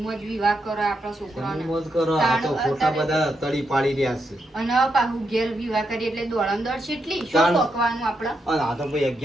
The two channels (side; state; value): both; normal; correlation 0.82